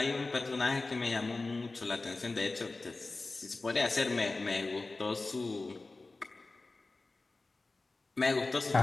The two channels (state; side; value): quieter; right; 3.4 dB